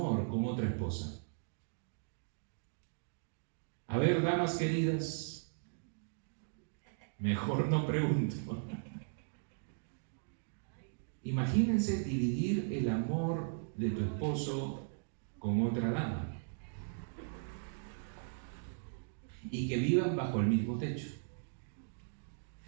con otra esposa. A ver, damas queridas, mejor no pregunto. Imagínense dividir el amor de tu esposo con otra dama y que vivan bajo el mismo techo.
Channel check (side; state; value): left; silent; digital silence